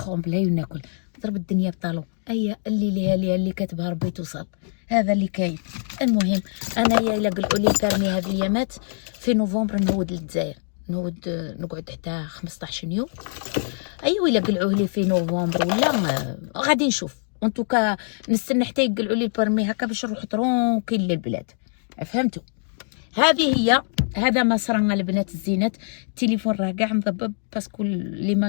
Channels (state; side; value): silent; right; digital silence